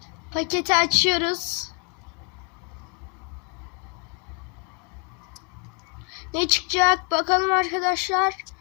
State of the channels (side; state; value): right; quieter; 31.4 dB